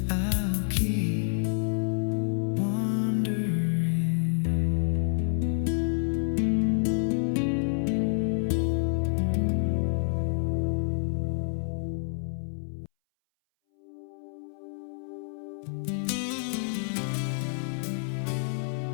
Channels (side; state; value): right; silent; 59 dB below the other